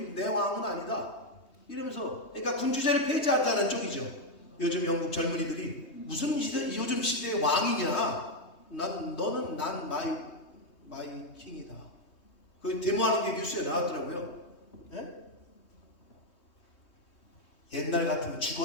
내 왕은 아니다. 이러면서, 그러니까 군주제를 폐지하자는 쪽이죠. 요즘 영국 젊은이들이 무슨 요즘 시대의 왕이냐? 너는 난 마이 킹이다. 그 데모하는 게 뉴스에 나왔더라고요. 예? 옛날 같으면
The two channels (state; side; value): late; right; 3.2 ms